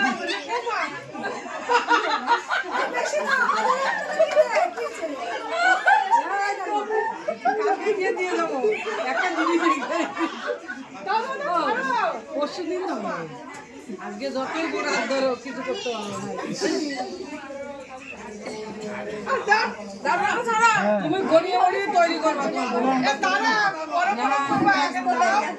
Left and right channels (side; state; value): both; identical; correlation 1.00